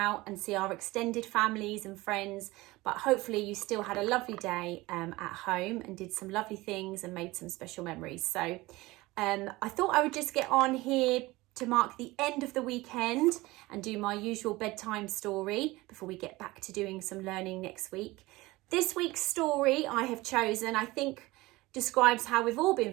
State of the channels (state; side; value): quieter; left; 20.4 dB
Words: and see our extended families and friends, but hopefully you still had a lovely day at home and did some lovely things and made some special memories. So I thought I would just get on here to mark the end of the weekend and do my usual bedtime story before we get back to doing some learning next week. This week's story I have chosen, I think, describes how we've all